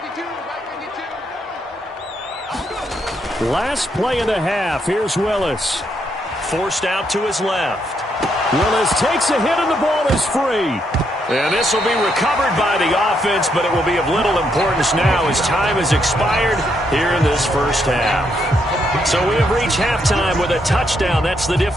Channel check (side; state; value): both; normal; correlation 0.77